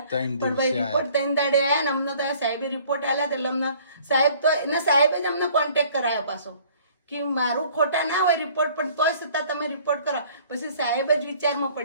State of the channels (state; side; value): inverted; both; correlation -0.55